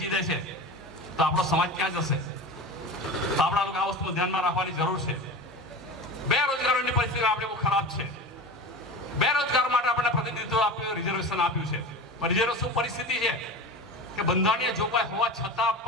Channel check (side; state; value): both; normal; correlation 0.30